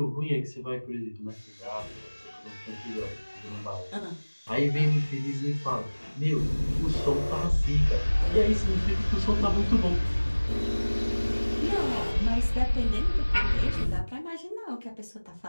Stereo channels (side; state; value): both; inverted; correlation -1.00